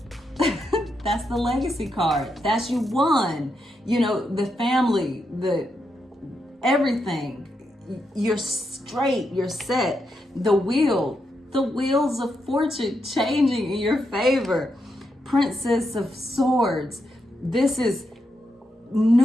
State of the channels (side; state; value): both; normal; correlation 0.83